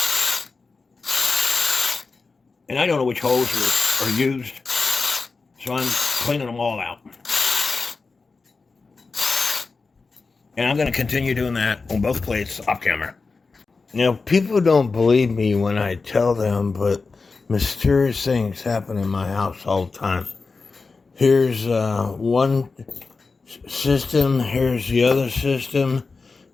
And I don't know which holes are used, so I'm cleaning them all out. And I'm going to continue doing that on both plates off camera. Now, people don't believe me when I tell them, but mysterious things happen in my house all the time. Here's one system, here's the other system,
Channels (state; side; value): quieter; right; 4.2 dB